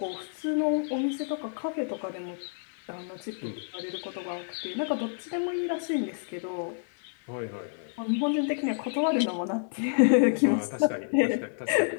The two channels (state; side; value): silent; right; 58 dB below the other